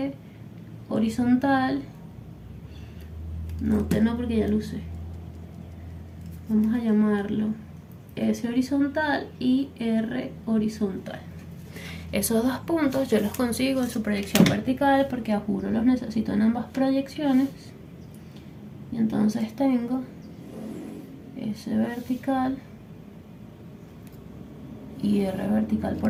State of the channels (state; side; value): identical; both; correlation 1.00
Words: horizontal. No, T no, porque ya lo usé. Vamos a llamarlo S horizontal y R horizontal. Esos 2 puntos yo los consigo en su proyección vertical, porque a juro los necesito en ambas proyecciones. Y entonces tengo S vertical y R vertical